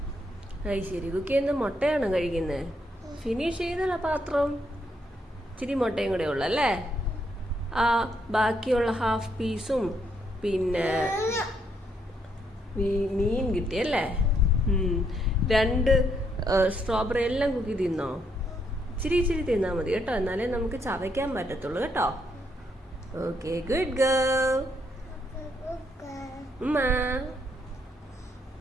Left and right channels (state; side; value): normal; both; correlation 0.75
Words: അത് ശരി. കുക്ക് ചെയ്യുന്ന മുട്ടയാണോ കഴിക്കുന്നത്? ഫിനിഷ് ചെയ്തല്ല പാത്രം. ഇച്ചിരി മുട്ടയും കൂടെ ഉള്ളല്ലേ. ആ ബാക്കിയുള്ള ഹാഫ് പീസും പിന്നെ മീൻ കിട്ടിയല്ലേ. 2 സ്ട്രോബെറി എല്ലാം കുക്കി തിന്നോ? ഇച്ചിരി ഇച്ചിരി തിന്നാൽ മതി കേട്ടോ, എന്നാലേ നമുക്ക് ചവയ്ക്കാൻ പറ്റത്തുള്ളൂ കേട്ടോ. Okay, good girl.